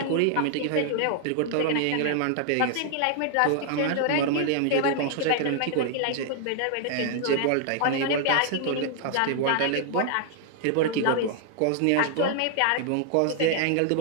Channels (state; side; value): different; both; correlation 0.00